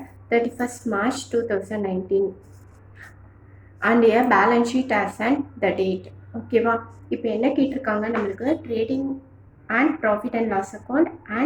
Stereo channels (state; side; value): identical; both; correlation 1.00